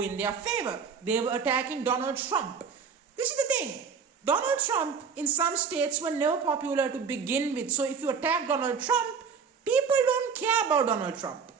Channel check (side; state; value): left; quieter; 6.0 dB